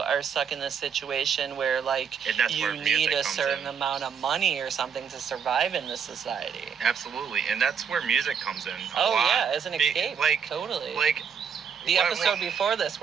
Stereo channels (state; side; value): quieter; left; 6.9 dB